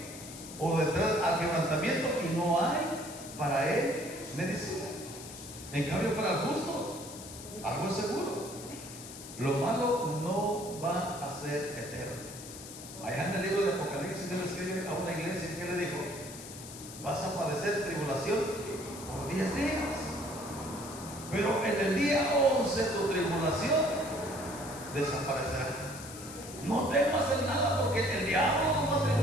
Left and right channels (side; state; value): left; noise; hiss, 13 dB below the sound